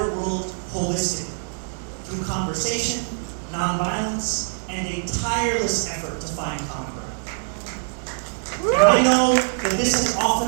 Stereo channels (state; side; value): silent; left; digital silence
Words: world holistically, conversation, nonviolence, and a tireless effort to find common ground. And I know that this has often